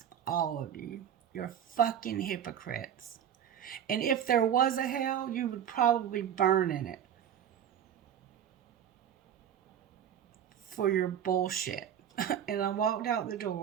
all of you. You're fucking hypocrites. And if there was a hell, you would probably burn in it for your bullshit. And I walked out the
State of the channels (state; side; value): quieter; left; 9.5 dB